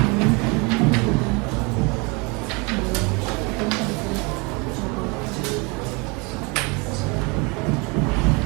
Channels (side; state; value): left; quieter; 29.3 dB